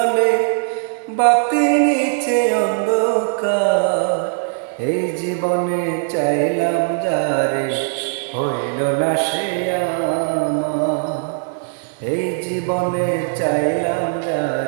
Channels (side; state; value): left; silent; digital silence